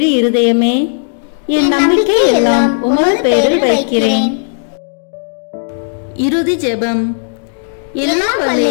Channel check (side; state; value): right; silent; digital silence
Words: இருதயமே, என் நம்பிக்கை எல்லாம் உமது பெயரில் வைக்கிறேன். இறுதி ஜெபம். எல்லாம் வல்ல